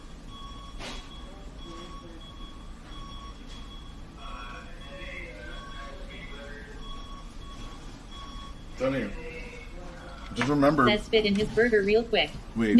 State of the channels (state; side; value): identical; both; correlation 1.00